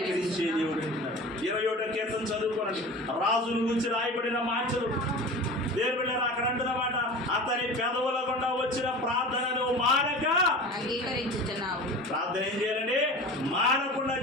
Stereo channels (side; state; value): both; normal; correlation 0.35